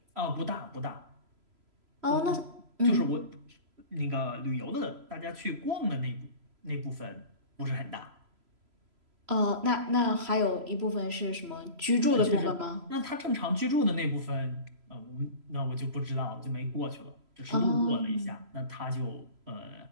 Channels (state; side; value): late; left; 3.0 ms